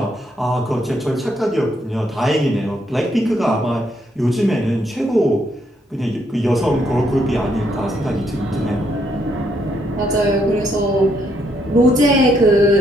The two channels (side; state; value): both; normal; correlation 0.74